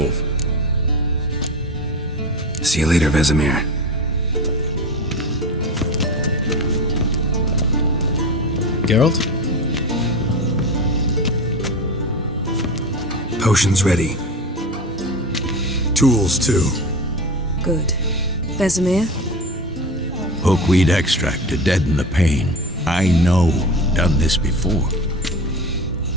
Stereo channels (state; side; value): normal; both; correlation 0.28